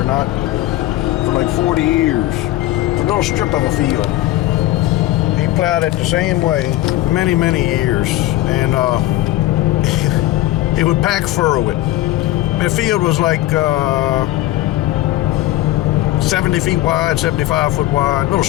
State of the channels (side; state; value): right; quieter; 15.8 dB